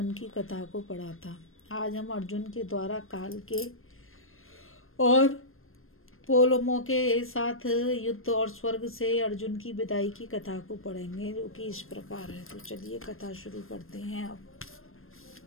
की कथा को पढ़ा था। आज हम अर्जुन के द्वारा काल के और पोलमों के साथ युद्ध और स्वर्ग से अर्जुन की विदाई की कथा को पढ़ेंगे, जो कि इस प्रकार है। तो चलिए कथा शुरू करते हैं। अब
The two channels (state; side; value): late; right; 0.60 ms